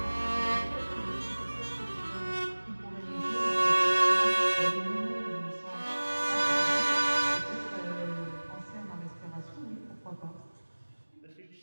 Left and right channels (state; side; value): inverted; both; correlation -1.00